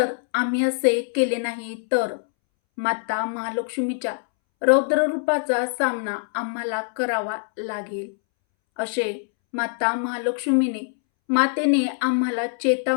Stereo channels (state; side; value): silent; right; 63 dB below the other